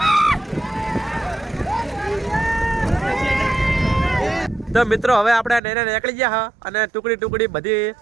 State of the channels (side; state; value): left; drops out; at 5.6 s